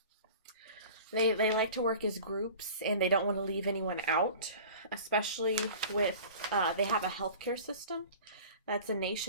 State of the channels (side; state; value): both; inverted; correlation -0.40